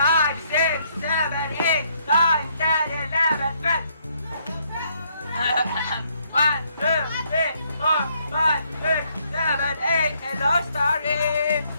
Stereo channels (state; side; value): inverted; both; correlation -0.70